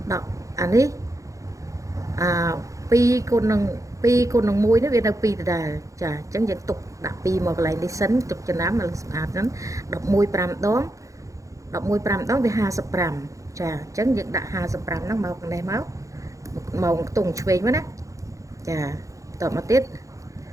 អានេះ2គុណនឹង1នេះវានៅ2ដដែលចាអញ្ចឹងយើងទុកដាក់2មកកន្លែងនេះសិនទុកចំណាំឲ្យស្អាតហ្នឹង11 5ដង11 5ដងវា55ចាអញ្ចឹងយើងដាក់55ហ្នឹងមកខាងនេះមកខ្ទង់ឆ្វេងមកណាចាតមកទៀត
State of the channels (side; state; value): left; late; 0.16 ms